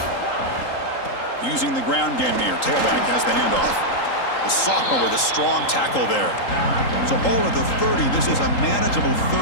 Using the ground game here. Tailback has the handoff. The sophomore with a strong tackle there. So ball at the 30. This is a manageable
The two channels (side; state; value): right; late; 3.8 ms